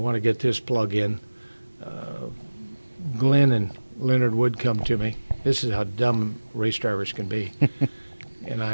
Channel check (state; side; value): inverted; both; correlation -1.00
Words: to get this plug in. Glenn and Leonard Wood come to me. This is how dumb race drivers can be, and